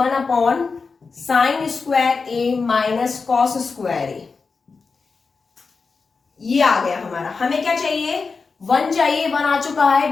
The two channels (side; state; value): right; quieter; 4.7 dB